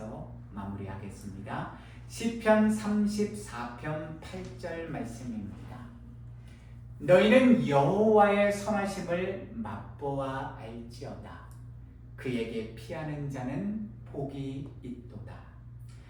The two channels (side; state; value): both; identical; correlation 1.00